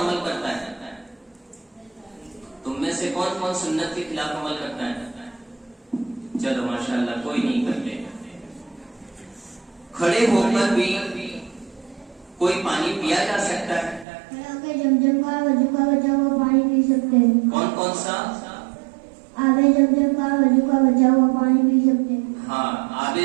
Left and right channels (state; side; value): drops out; left; at 14.1 s